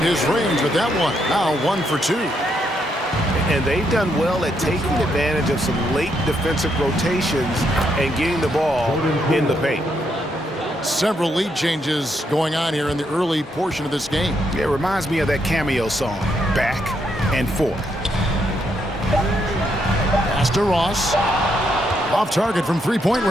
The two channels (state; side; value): normal; both; correlation 0.77